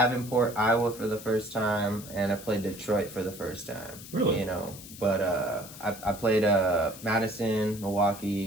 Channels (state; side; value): noise; left; hiss, 15 dB below the sound